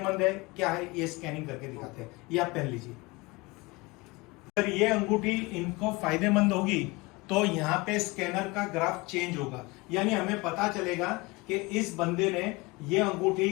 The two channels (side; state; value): right; quieter; 24.1 dB